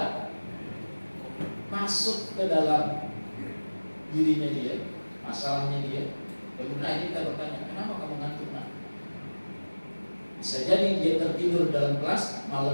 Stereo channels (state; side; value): inverted; both; correlation -1.00